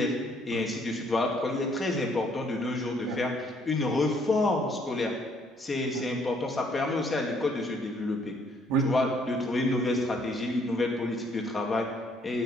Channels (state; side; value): normal; both; correlation 0.66